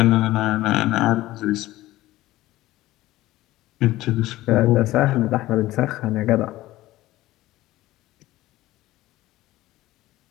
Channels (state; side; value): quieter; right; 16.7 dB